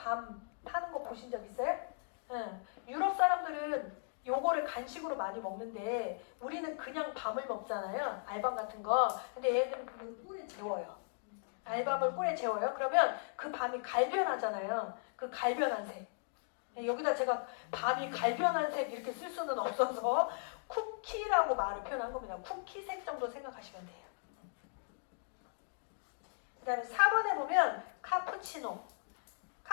파는 거 보신 적 있어요? 응. 유럽 사람들은 요거를 간식으로 많이 먹는데 우리는 그냥 밤을 먹잖아요. 알밤 같은 거. 근데 얘는 그 꿀에 재워요. 알밤을 꿀에 재워요. 그러면 그 밤이 갈변하잖아요. 그 갈변한 색. 여기다 제가 밤이 갈변한 색 이렇게 쓸 수는 없어서 쿠키라고 말을 표현한 겁니다. 쿠키색 정도 생각하시면 돼요. 그 다음에 4번에 보면 카푸치노.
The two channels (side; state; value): right; silent; digital silence